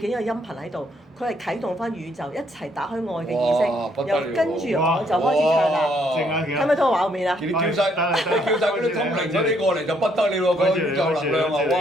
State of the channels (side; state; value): both; normal; correlation 0.70